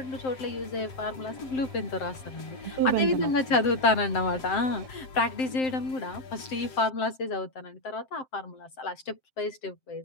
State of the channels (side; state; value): right; late; 7.7 ms